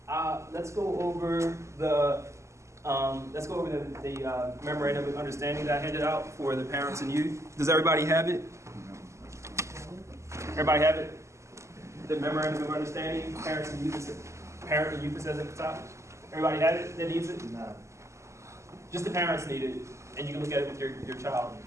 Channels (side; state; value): left; late; 0.14 ms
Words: Let's go over the memorandum of understanding that I handed out for the parents and youth. Does everybody have it? Everybody have it? The memorandum of understanding, parent and youth, it says at the top. Everybody have it that needs it? No. Just the parents need it, and you can look at it with your child.